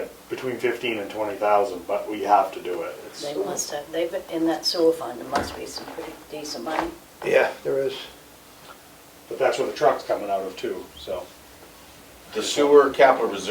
between 15 and 20,000, but we have to do it. They must have, they've, in that sewer fund, there must be some pretty decent money. yeah, there is. But that's where the truck's coming out of too, so. The sewer capital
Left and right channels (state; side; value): identical; both; correlation 1.00